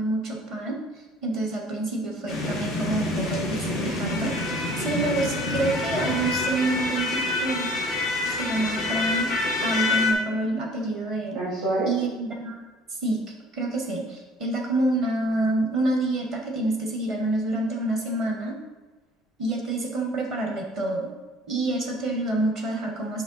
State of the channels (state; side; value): normal; both; correlation 0.53